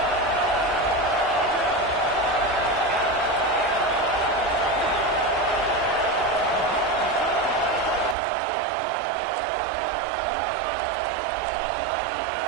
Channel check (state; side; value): drops out; left; at 8.2 s